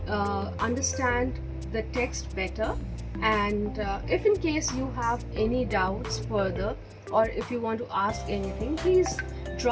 understand the text better. And if in case you have any doubts further, or if you want to ask anything, please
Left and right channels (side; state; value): both; identical; correlation 1.00